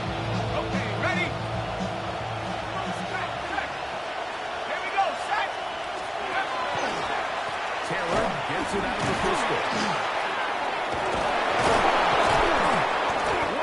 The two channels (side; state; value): both; identical; correlation 1.00